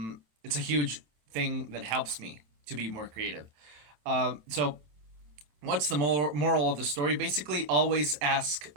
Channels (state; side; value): late; left; 27 ms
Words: a huge thing that helps me to be more creative. So what's the moral of the story? Basically, always ask